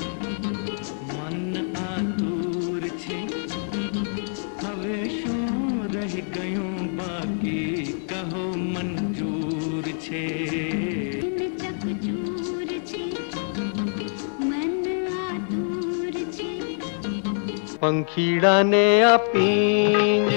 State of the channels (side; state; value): right; silent; 56 dB below the other